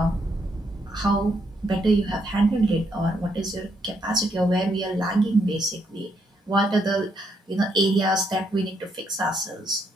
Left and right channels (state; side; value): normal; both; correlation 0.75